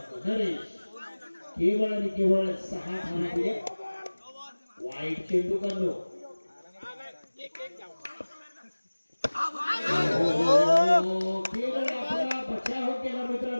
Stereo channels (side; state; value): both; inverted; correlation -1.00